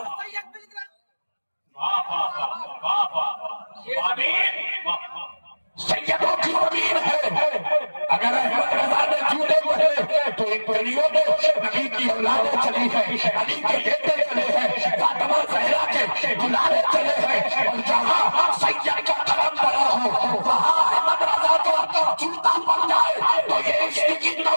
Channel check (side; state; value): both; inverted; correlation -1.00